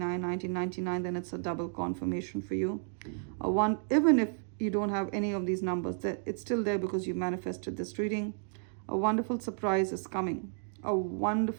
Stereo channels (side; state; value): left; silent; 56 dB below the other